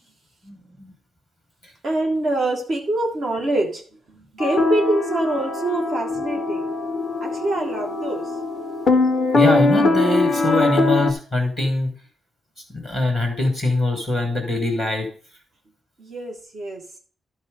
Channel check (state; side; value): normal; both; correlation 0.80